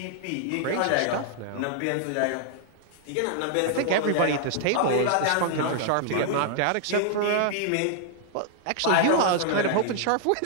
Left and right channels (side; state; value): both; different; correlation 0.00